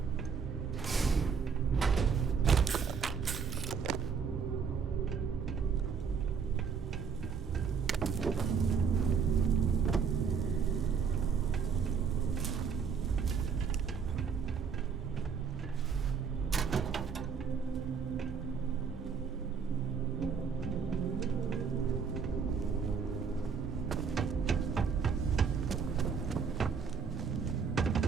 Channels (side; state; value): left; quieter; 6.2 dB